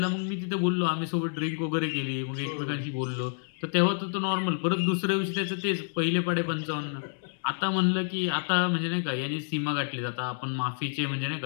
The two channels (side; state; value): right; silent; digital silence